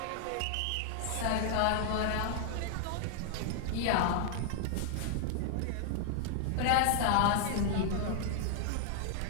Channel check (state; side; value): different; both; correlation 0.00